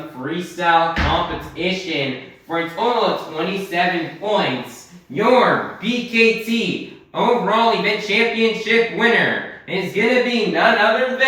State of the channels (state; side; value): identical; both; correlation 1.00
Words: Freestyle Competition, for a total of 27 points, your BKT overall event championship winner is going to be none other